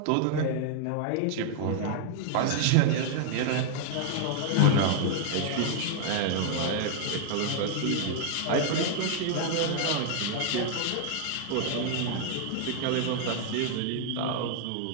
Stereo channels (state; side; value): different; both; correlation 0.00